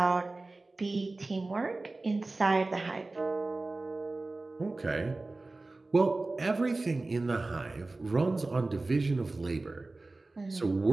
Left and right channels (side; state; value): left; quieter; 3.2 dB